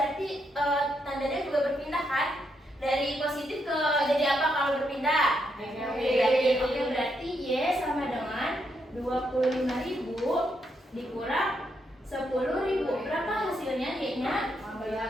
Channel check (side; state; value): both; normal; correlation 0.79